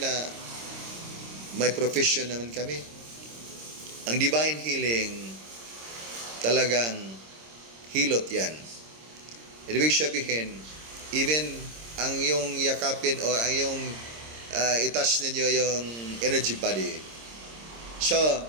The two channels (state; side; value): late; left; 26 ms